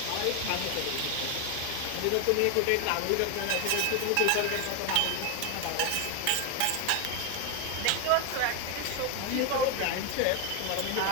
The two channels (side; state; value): both; different; correlation 0.01